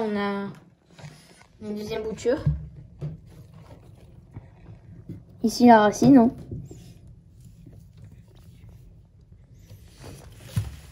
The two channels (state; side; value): identical; both; correlation 1.00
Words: a une deuxième bouture. Ici, la racine, hein.